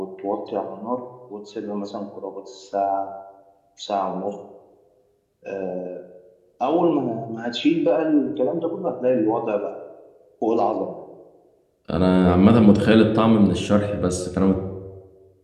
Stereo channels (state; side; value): identical; both; correlation 1.00